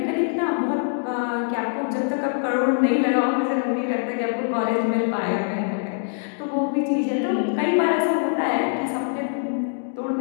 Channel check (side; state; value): right; silent; digital silence